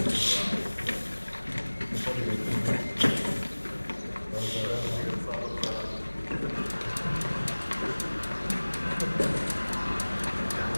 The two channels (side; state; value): both; inverted; correlation -1.00